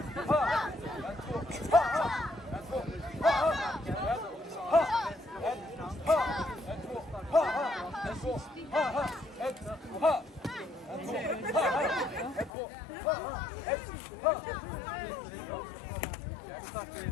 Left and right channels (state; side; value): drops out; right; at 12.5 s